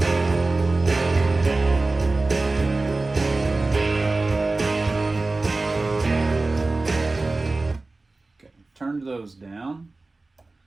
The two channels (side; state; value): left; quieter; 3.3 dB